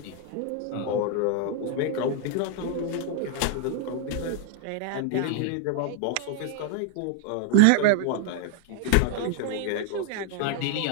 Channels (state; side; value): different; both; correlation 0.00